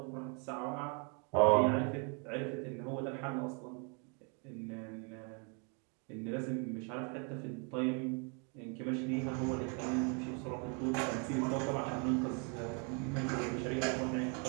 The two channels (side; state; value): left; quieter; 36.6 dB